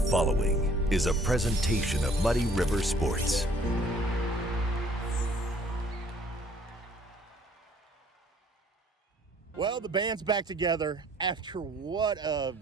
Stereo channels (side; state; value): both; normal; correlation 0.58